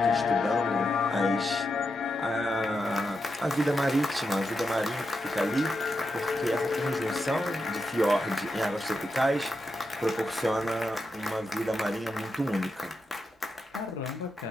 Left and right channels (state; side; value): normal; both; correlation 0.86